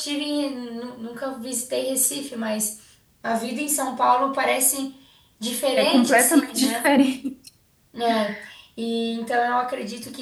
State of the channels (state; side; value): identical; both; correlation 1.00